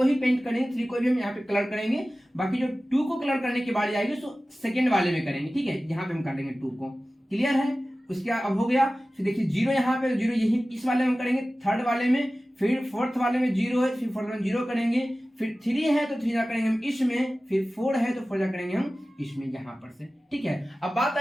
ही पेंट करेंगे, 3 को भी हम यहाँ पे कलर करेंगे, बाकी जो 2 को कलर करने की बारी आएगी सो सेकेंड वाले में करेंगे, ठीक है, यहाँ पे हम कर देंगे 2 को, क्लियर है। उसके अब हो गया, फिर देखिए 0 यहाँ पे, 0 यही इस वाले में करेंगे, थर्ड वाले में, फिर फोर्थ वाले में 0 है, फिर फोर्थ में 0 करेंगे, फिर 3 है तो 3 जा करेंगे हम इसमें, फिर 4 है तो 4 जा करेंगे हम इसमें, यहाँ पर से, ठीक है। अब बात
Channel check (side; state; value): both; normal; correlation 0.96